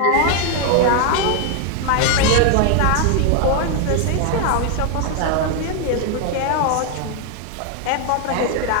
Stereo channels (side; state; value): both; different; correlation 0.00